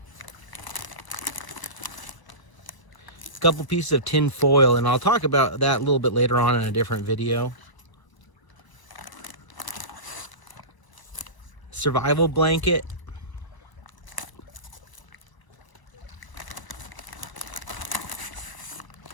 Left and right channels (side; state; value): right; late; 1.0 ms